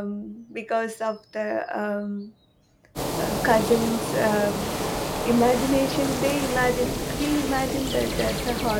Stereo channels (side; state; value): both; identical; correlation 1.00